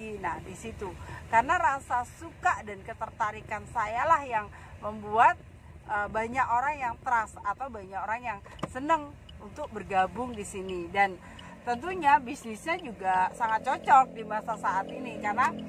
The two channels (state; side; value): identical; both; correlation 1.00